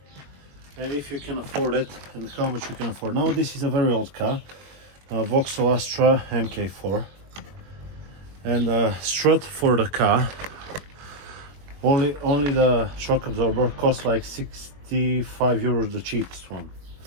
and if you can afford it and how much you can afford. Now this is a very old car, Vauxhall Astra MK4, and strut for the car, only the shock absorber costs like 65 euros, the cheapest one.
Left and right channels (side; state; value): left; late; 21 ms